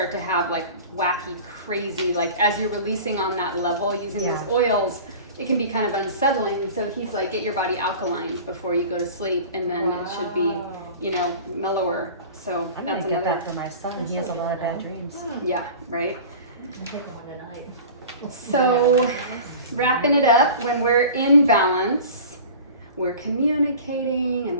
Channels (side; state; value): both; inverted; correlation -0.39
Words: to have like wacky, crazy, like as you're releasing on that level using those oils, it can be kind of unsettling. So he's like, get your body alkaline before you go to sleep, and then it should be, you know, mellower. So I'm gonna that's get another, that for my son. He has a lot of bad dreams. yeah, right? I'm taking one tonight. So wrapping it up, when we're in balance, we're communicating and